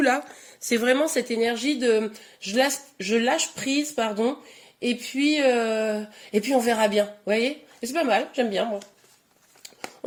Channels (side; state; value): both; identical; correlation 1.00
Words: là, c'est vraiment cette énergie de je lâche prise, pardon, et puis on verra bien. Vous voyez? Et c'est pas mal, j'aime bien moi.